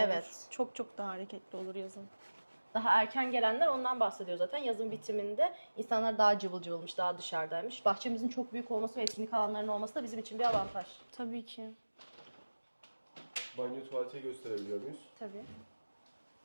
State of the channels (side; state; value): both; inverted; correlation -1.00